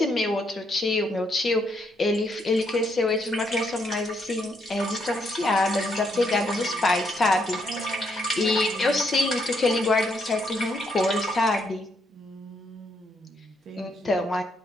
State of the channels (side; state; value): both; normal; correlation 0.75